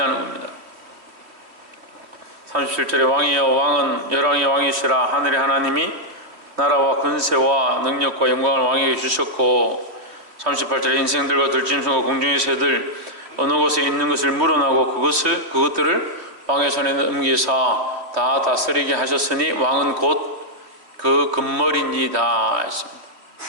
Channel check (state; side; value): late; left; 3.1 ms